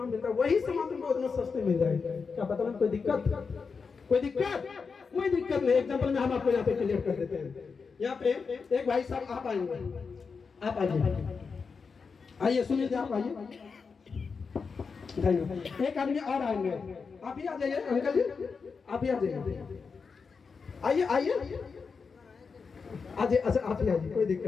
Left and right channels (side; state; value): right; quieter; 5.2 dB